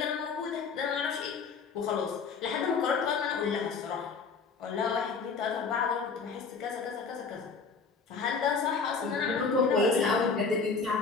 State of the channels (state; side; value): quieter; right; 5.1 dB